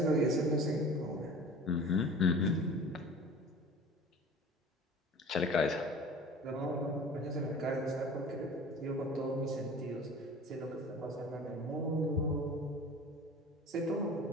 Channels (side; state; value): both; normal; correlation 0.41